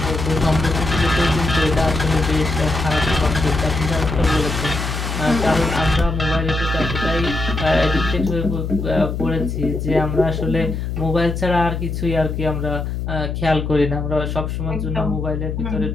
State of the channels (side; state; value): left; noise; hum, 4 dB below the sound